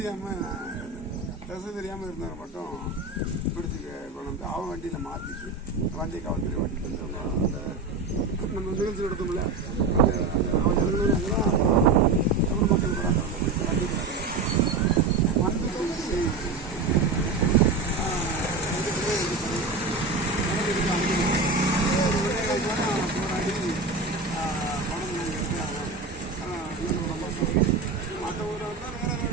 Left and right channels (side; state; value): left; quieter; 3.8 dB